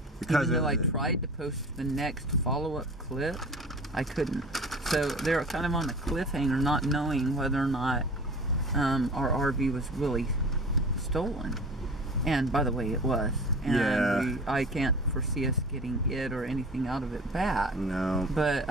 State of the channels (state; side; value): normal; both; correlation 0.39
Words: Because even though I tried to post the next follow-up clip, I couldn't. So they're kind of on a cliffhanger, not knowing whether or not our RV was really stolen. And by the way, it was. And Yeah. I can't foresee us getting it or anything out of it back. No. But